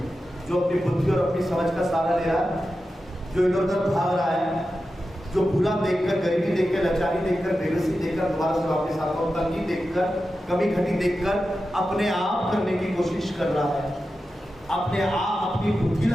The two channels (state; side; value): normal; both; correlation 0.91